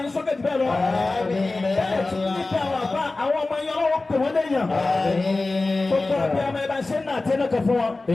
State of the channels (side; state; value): right; quieter; 3.3 dB